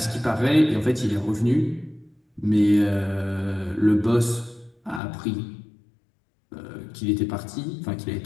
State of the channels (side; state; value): right; drops out; at 5.0 s